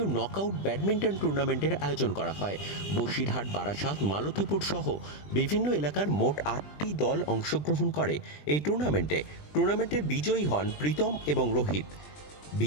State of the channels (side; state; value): right; late; 20 ms